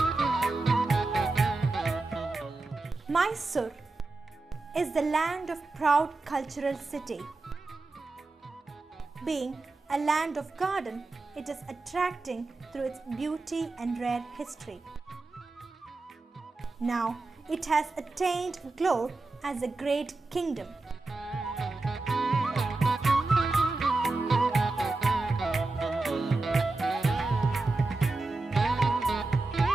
is the land of proud cultural city. Being a land of garden, it is attracting through its beauty and rare history. Now, it has attained glory as a great kingdom.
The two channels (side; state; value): left; quieter; 3.4 dB